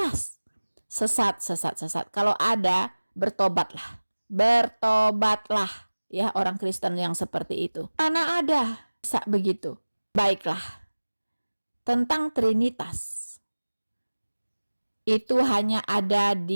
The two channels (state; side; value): inverted; both; correlation -1.00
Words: Sesat. Kalau ada, bertobatlah ya orang Kristen yang seperti itu. Mana ada begitu. Baiklah, tentang Trinitas itu hanya ada